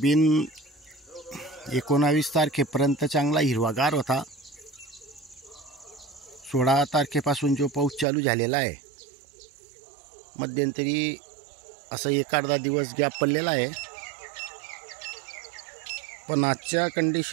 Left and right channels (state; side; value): drops out; left; at 8.1 s